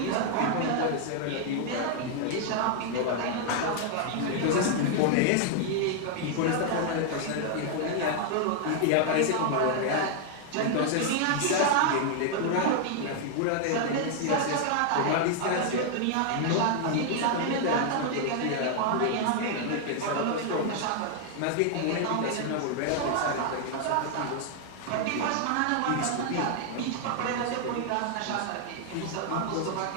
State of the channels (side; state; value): both; different; correlation 0.00